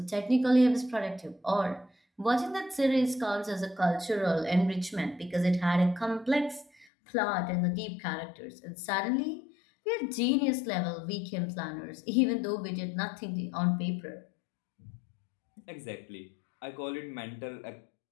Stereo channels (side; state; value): right; drops out; at 6.9 s